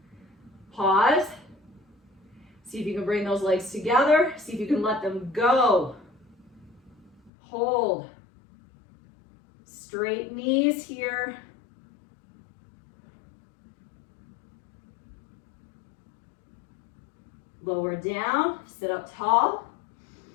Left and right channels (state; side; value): drops out; right; at 7.3 s